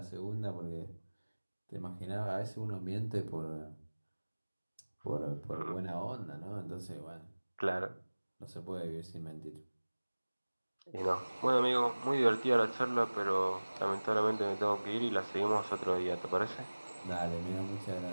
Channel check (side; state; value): both; inverted; correlation -1.00